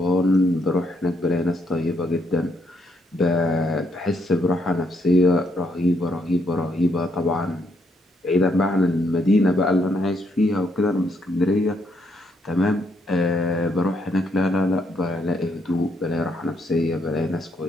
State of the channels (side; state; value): both; normal; correlation 0.75